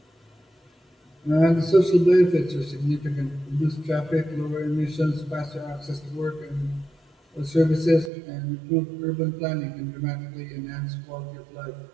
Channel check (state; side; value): drops out; left; at 8.1 s